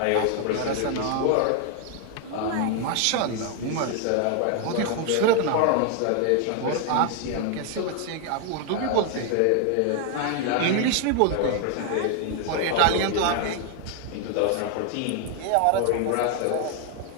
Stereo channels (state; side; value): different; both; correlation 0.00